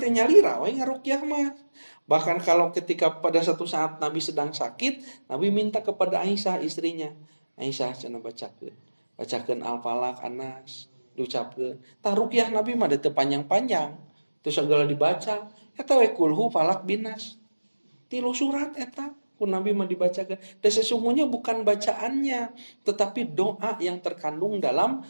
nyalira we ngaruqyah mah. Bahkan kalau ketika pada satu saat Nabi sedang sakit, Nabi minta kepada Aisyah istrinya. Aisyah cenah bacakeun Al-Falaq, An-Nas, diucapkeun. Tah ruqyah Nabi mah teu panjang-panjang. Terus segala dibaca, eta we kulhu falaq binas. 3 surat eta ku Nabi mah dibacakeun. Dan sesungguhnya bukan bacaannya, tetapi doa yang terkandung dalam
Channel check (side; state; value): both; inverted; correlation -1.00